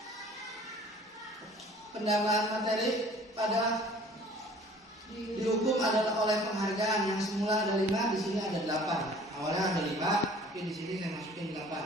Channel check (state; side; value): normal; both; correlation 0.51